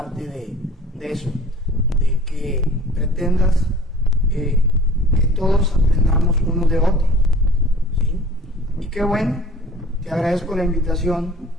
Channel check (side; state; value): both; normal; correlation 0.47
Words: de eso, de que pretendas que todos aprendamos unos de otros, ¿sí? Y qué bueno, te agradezco la invitación